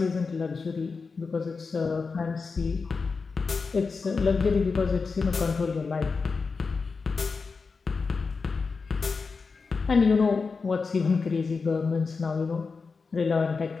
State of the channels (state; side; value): quieter; right; 4.7 dB